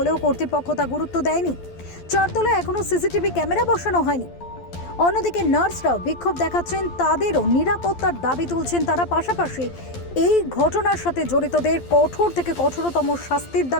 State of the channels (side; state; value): right; late; 12 ms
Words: কর্তৃপক্ষ তা গুরুত্ব দেয়নি। চারতলায় এখনো সিসিটিভি ক্যামেরা বসানো হয়নি। অন্যদিকে নার্সরাও বিক্ষোভ দেখাচ্ছেন, তাদেরও নিরাপত্তার দাবি তুলছেন তারা। পাশাপাশি এই ঘটনার সাথে জড়িতদের কঠোর থেকে কঠোরতম শাস্তির